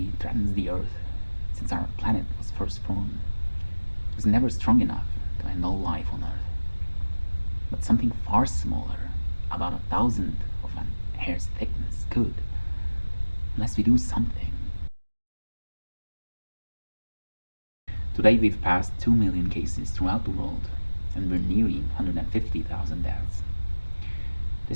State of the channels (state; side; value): inverted; both; correlation -1.00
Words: threatens the Earth since our planet was first formed. It was never strong enough to end all life on Earth. But something far smaller, about 1,000th of an hair's thickness, could, unless we do something. Today we've passed 2 million cases throughout the world, and we're nearing 150,000 deaths.